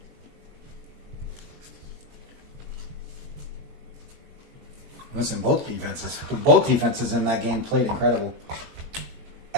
Listen, both defenses in that game played incredible.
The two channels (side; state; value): left; late; 21 ms